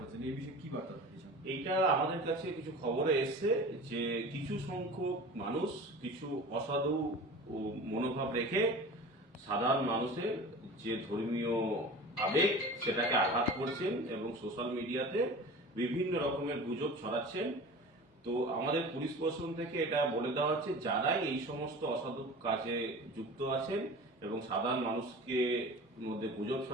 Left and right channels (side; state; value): both; normal; correlation 0.37